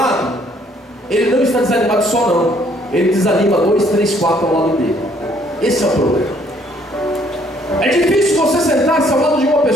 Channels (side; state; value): both; normal; correlation 0.64